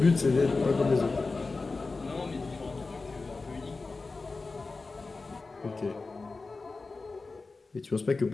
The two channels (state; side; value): quieter; right; 3.8 dB